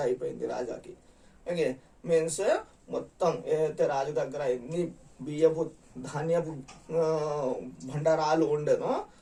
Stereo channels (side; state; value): both; identical; correlation 1.00